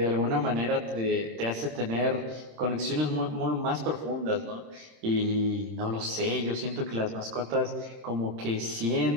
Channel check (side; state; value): left; late; 26 ms